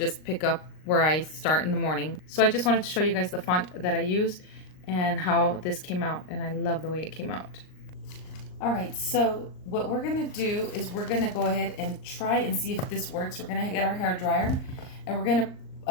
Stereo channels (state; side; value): late; right; 38 ms